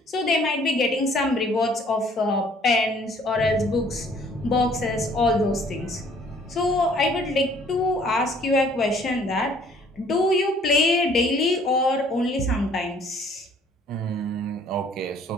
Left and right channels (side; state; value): both; normal; correlation 0.58